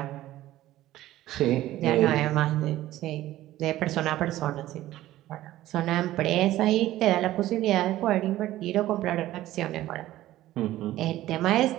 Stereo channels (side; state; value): left; quieter; 14.9 dB